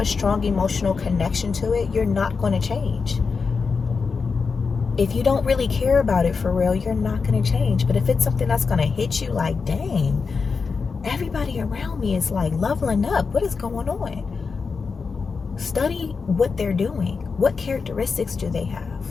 strong emotional connection to it, you're not going to change. If you don't really care about it for real, you're not going to change. But if it's something that's going to hit you like, dang, everybody around me is like leveling up, what is going on? Study what they're doing. What characteristics do they have?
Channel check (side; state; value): right; quieter; 5.0 dB